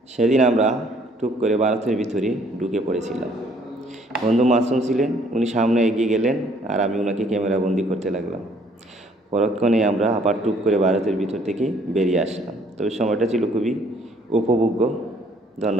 সেদিন আমরা টুক করে ভারতের ভিতরে ঢুকে পড়েছিলাম। বন্ধু মাসুম ছিলেন, উনি সামনে এগিয়ে গেলেন আর আমি ওনাকে ক্যামেরাবন্দি করতে লাগলাম। পরক্ষণে আমরা আবার টুক করে ভারতের ভিতর থেকে বেরিয়ে আসলাম। তবে সময়টা ছিল খুবই উপভোগ্য।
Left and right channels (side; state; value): both; normal; correlation 0.62